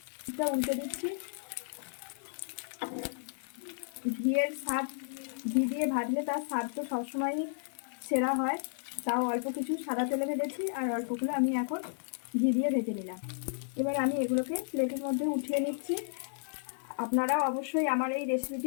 পিঠটা উল্টে দিচ্ছি। ঘিয়ের স্বাদ, ঘি দিয়ে ভাজলে তার স্বাদ তো সবসময়ই সেরা হয়। তাও অল্প কিছু সাদা তেলে ভেজেছি, আর অল্পগুলো আমি এখন ঘি দিয়ে ভেজে নিলাম। এবার আমি এগুলোকে প্লেটের মধ্যে উঠিয়ে নিচ্ছি। আপনারাও অবশ্যই আমার এই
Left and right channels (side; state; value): right; silent; digital silence